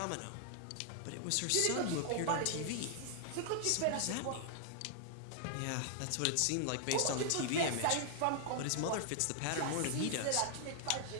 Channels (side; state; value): both; different; correlation -0.01